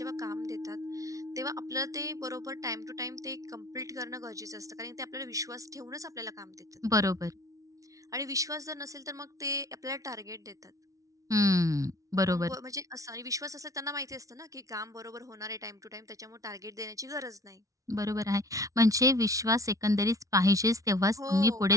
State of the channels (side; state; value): left; late; 0.17 ms